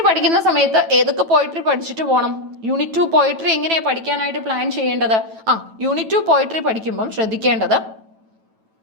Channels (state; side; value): late; left; 9.1 ms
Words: പഠിക്കുന്ന സമയത്ത് ഏതൊക്കെ പോയിട്രി പഠിച്ചിട്ട് പോകണം? യൂണിറ്റ് 2 പോയിട്രി എങ്ങനെയാണ് പഠിക്കാനായിട്ട് പ്ലാൻ ചെയ്യേണ്ടത്? യൂണിറ്റ് 2 പോയിട്രി പഠിക്കുമ്പം ശ്രദ്ധിക്കേണ്ടത്